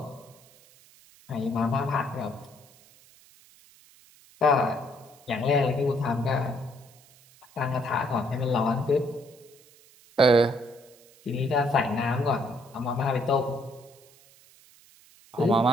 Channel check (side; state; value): right; noise; hiss, 26 dB below the sound